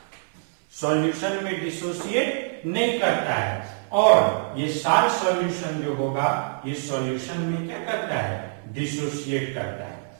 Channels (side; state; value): left; silent; 62 dB below the other